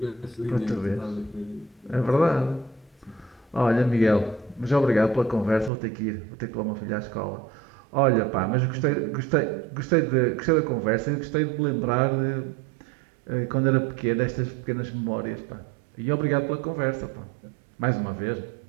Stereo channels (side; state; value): left; drops out; at 5.7 s